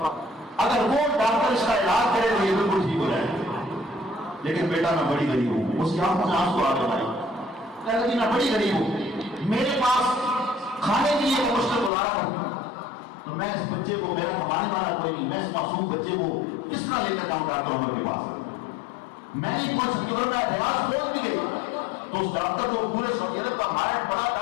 اگر وہ ڈاکٹر اس کا علاج کرے تو یہ بالکل ٹھیک ہو جائے گا۔ لیکن بیٹا میں بڑی غریب ہوں، اس کی آنکھوں سے آنسو آ گئے بھائی، کہتا جی میں بڑی غریب ہوں، میرے پاس کھانے کے لیے میں مشکل گزارا کرتا ہوں، تو میں اس بچے کو، میرا کمانے والا کوئی نہیں، میں اس معصوم بچے کو کس طرح لے کر جاؤں ڈاکٹر عمر کے پاس؟ میں نہیں پہنچ سکتی، اگر میں ریاض پہنچ بھی گئی تو اس ڈاکٹر جو پورے سعودی عرب کا ماہر بڑا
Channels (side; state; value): right; drops out; at 11.9 s